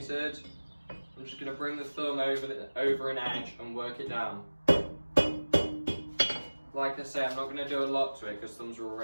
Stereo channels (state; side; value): inverted; both; correlation -1.00